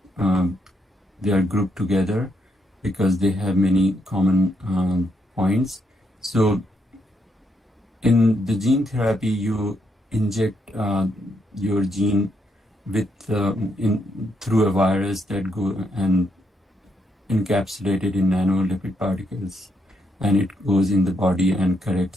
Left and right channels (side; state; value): both; normal; correlation 0.77